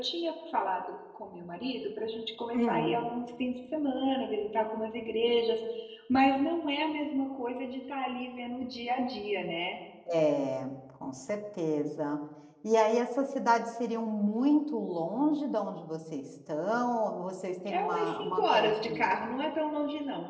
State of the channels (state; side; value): identical; both; correlation 1.00